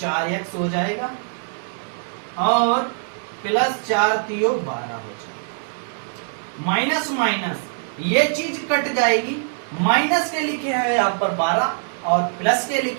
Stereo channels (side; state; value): left; silent; digital silence